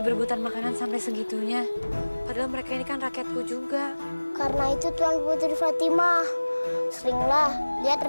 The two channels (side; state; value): both; inverted; correlation -1.00